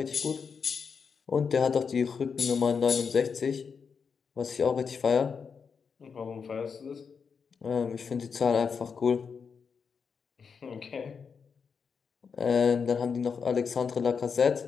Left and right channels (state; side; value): quieter; right; 6.0 dB